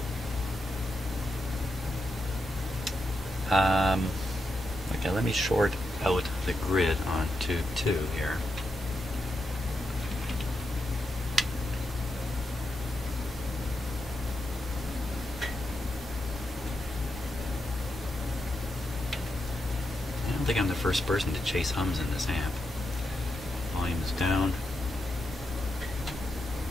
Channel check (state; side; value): normal; both; correlation 0.85